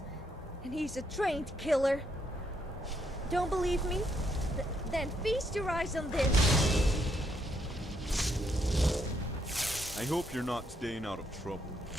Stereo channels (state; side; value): normal; both; correlation 0.75